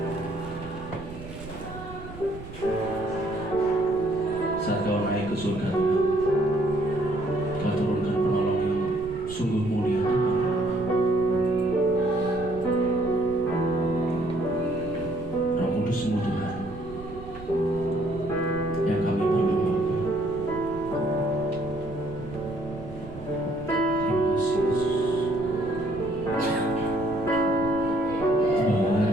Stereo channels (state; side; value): noise; right; rumble, 14 dB below the sound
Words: Saat Kau naik ke surga, Tuhan, Kau turunkan penolong yang sungguh mulia, Tuhan. Roh Kudus-Mu, Tuhan, yang kami perlu, Bapa. Terima kasih, Yesus.